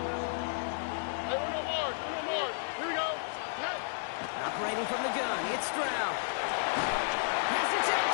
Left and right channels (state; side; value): silent; right; 56 dB below the other